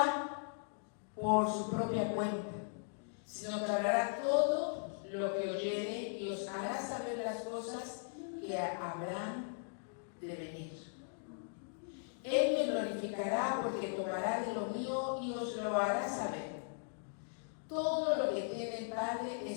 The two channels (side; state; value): right; silent; digital silence